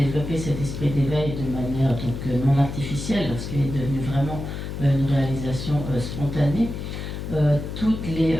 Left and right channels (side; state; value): left; noise; hum, 6 dB below the sound